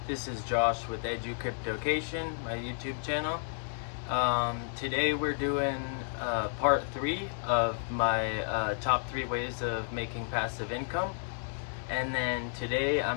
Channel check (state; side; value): silent; right; 57 dB below the other